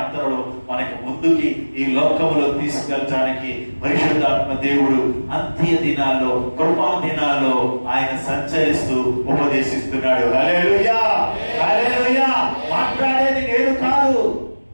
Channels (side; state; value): both; inverted; correlation -1.00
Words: మనకు ముందుకి ఈ లోకములో తీసుకెళ్ళడానికి పరిశుద్ధాత్మ దేవుడు అంత్య దినాల్లో, కృపా దినాల్లో ఆయన సంచరిస్తూ ఉపదేశిస్తున్నాడు. హల్లెలూయా, హల్లెలూయా. మాట్లాడేది నేను కాదు,